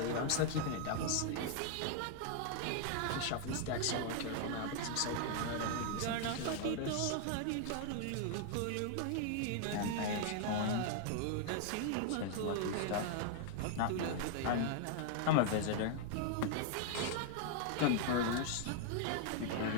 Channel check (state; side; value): different; both; correlation 0.00